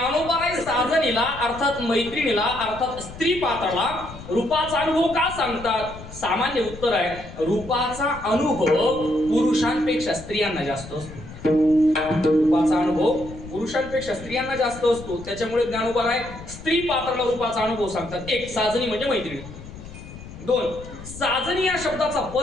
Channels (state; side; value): noise; left; rumble, 14 dB below the sound